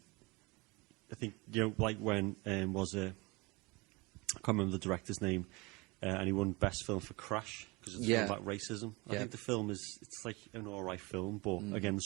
like when was it? I can't remember the director's name, and he won Best Film for Crash, because it's a film about racism. I think the film it's like an alright film, but again, the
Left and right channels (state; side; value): quieter; left; 25.4 dB